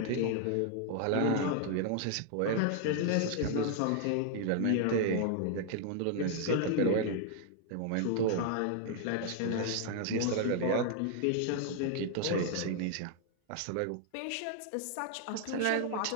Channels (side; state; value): both; different; correlation 0.00